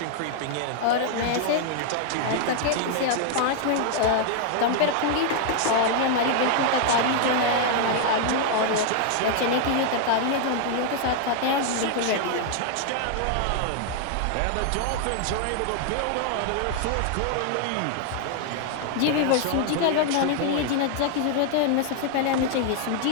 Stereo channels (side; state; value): both; different; correlation 0.00